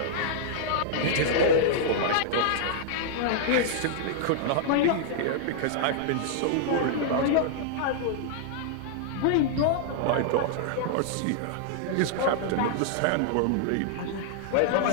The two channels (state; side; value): different; both; correlation -0.01